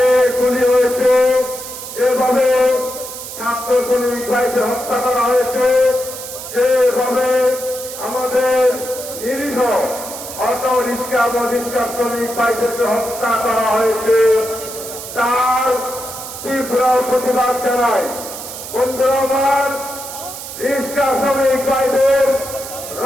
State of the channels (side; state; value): right; noise; hiss, 10 dB below the sound